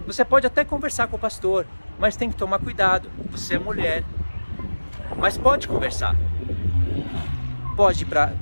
você pode até conversar com o pastor, mas tem que tomar cuidado. Você é mulher, mas pode conversar. Pode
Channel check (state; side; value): inverted; both; correlation -1.00